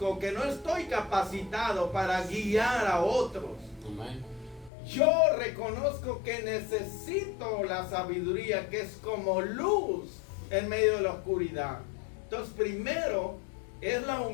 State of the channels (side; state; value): right; drops out; at 4.7 s